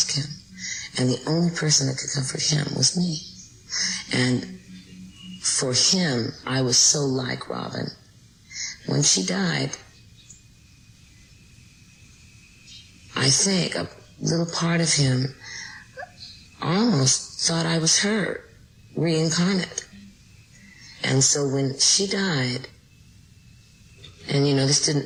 Kim. And the only person that could comfort him was me. And for him, I was so like Robin. When she died, I think a little part of him almost thought I was her, reincarnate. And so when she died, and this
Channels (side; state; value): both; identical; correlation 1.00